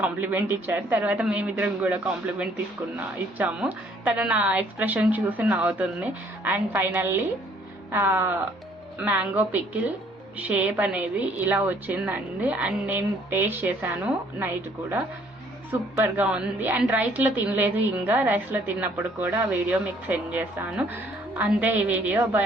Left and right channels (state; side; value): normal; both; correlation 0.61